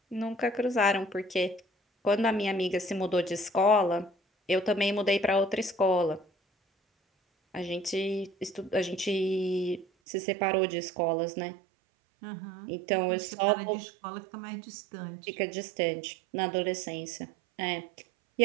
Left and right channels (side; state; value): left; drops out; at 9.9 s